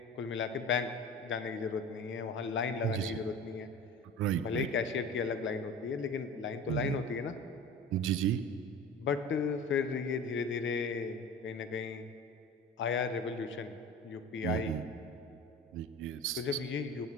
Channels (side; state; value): both; normal; correlation 0.36